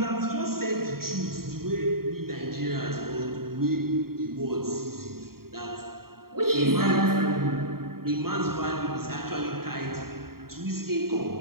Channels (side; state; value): left; late; 0.93 ms